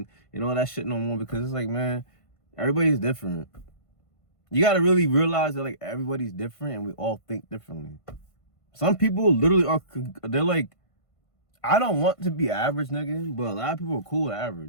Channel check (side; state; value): right; late; 1.5 ms